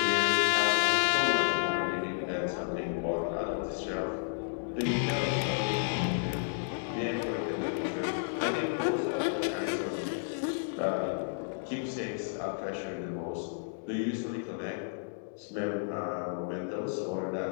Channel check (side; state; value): right; silent; digital silence